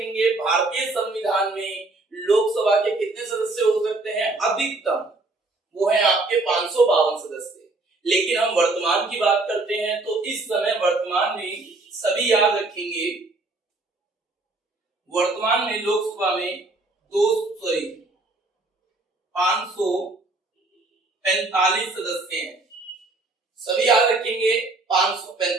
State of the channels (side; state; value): left; quieter; 3.2 dB